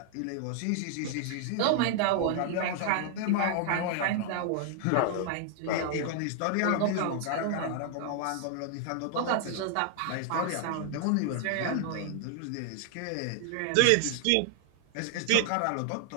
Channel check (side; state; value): both; different; correlation 0.00